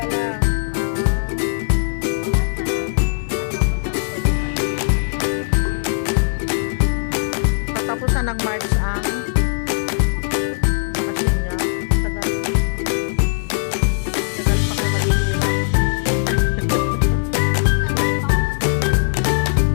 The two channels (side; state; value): right; silent; digital silence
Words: lang. Katapusan ng March ang